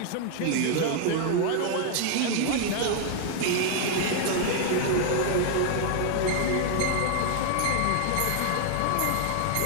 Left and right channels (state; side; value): different; both; correlation 0.00